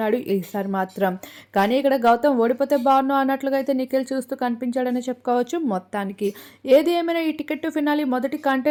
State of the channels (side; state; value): both; identical; correlation 1.00